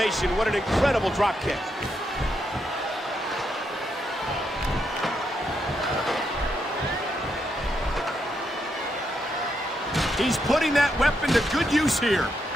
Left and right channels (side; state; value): both; normal; correlation 0.80